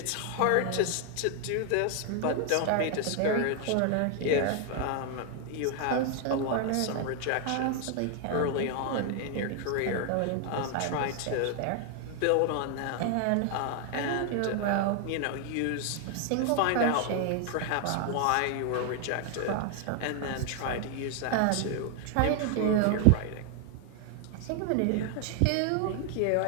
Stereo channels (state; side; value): different; both; correlation 0.00